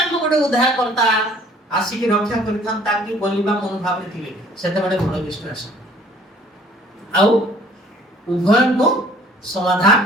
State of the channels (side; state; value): both; normal; correlation 0.55